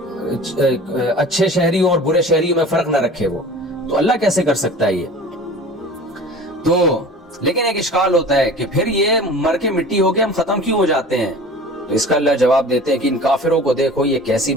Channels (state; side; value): normal; both; correlation 0.40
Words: اچھے شہریوں اور برے شہریوں میں فرق نہ رکھے. وہ تو اللہ کیسے کر سکتا ہے یہ؟ تو لیکن ایک اشکال ہوتا ہے کہ پھر یہ مر کے مٹی ہو کے ہم ختم کیوں ہو جاتے ہیں؟ تو اس کا اللہ جواب دیتے ہیں کہ ان کافروں کو دیکھو یہ کیسی